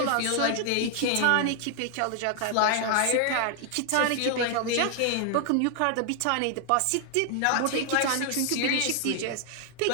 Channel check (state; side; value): different; both; correlation 0.00